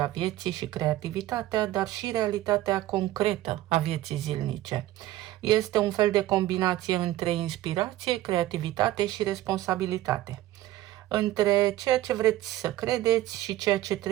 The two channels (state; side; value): quieter; left; 15.0 dB